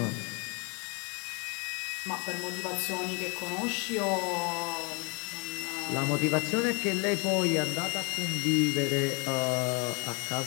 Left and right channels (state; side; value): quieter; right; 31.6 dB